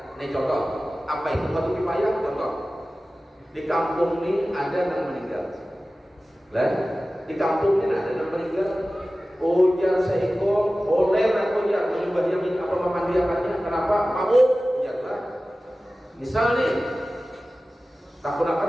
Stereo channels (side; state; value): both; normal; correlation 0.96